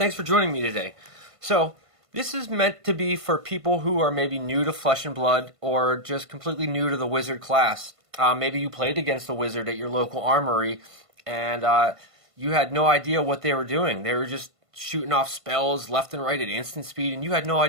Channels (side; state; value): left; late; 1.5 ms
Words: for joining me today. So, this is meant to be for people who are maybe new to Flesh and Blood or just completely new to the wizard class. Maybe you played against a wizard at your local armory and you had no idea what they were doing. They were just shooting off spells left and right at instant speed, and you had no